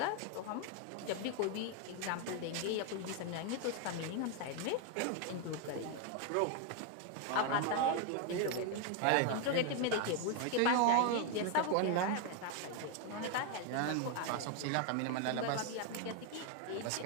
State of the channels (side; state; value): both; different; correlation 0.01